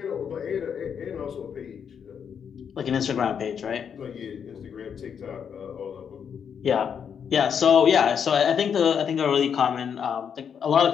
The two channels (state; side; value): quieter; right; 7.5 dB